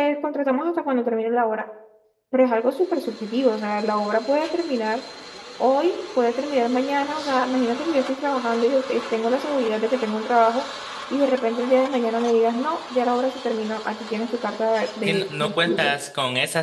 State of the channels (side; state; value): both; identical; correlation 1.00